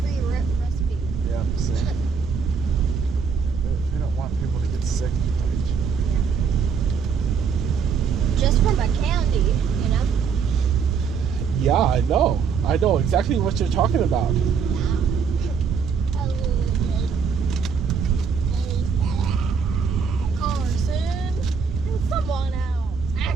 recipe. Yeah, see. We don't want people to get sick. Just from a candy, you know? Yeah, I know. I know exactly what you're talking about. Carson and someone else. Ah,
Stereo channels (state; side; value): quieter; left; 6.1 dB